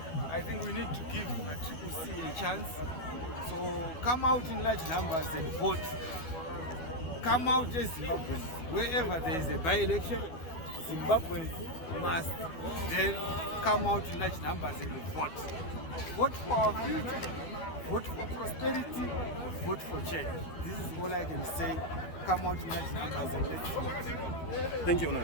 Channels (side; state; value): right; late; 12 ms